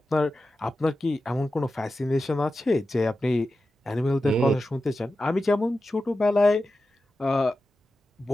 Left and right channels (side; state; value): both; normal; correlation 0.92